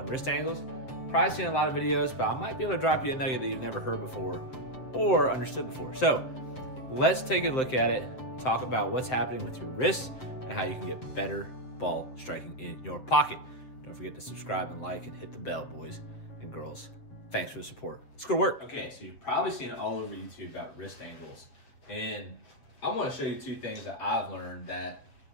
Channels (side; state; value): right; late; 7.5 ms